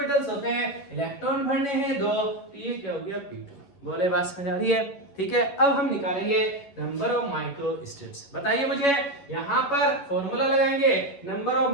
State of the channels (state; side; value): late; right; 11 ms